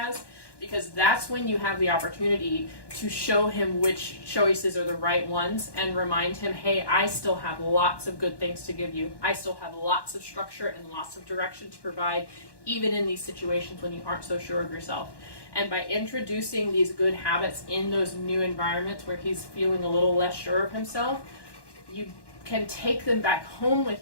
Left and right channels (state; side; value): late; right; 1.1 ms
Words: because that's when you have the opportunity to show him which choices are the right ones and remind him, hey, I still have lots of good things to give you. I still have lots of structure and lots of direction to provide, even in these situations when you aren't so sure of yourself. And by introducing these good habits in those new environments where he's feeling a little less sure of himself, you can take them back home with